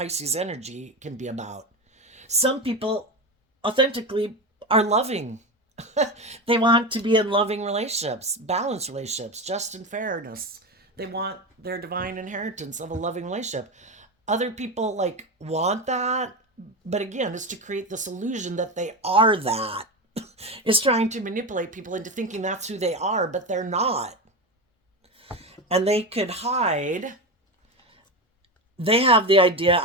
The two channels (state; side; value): normal; both; correlation 0.19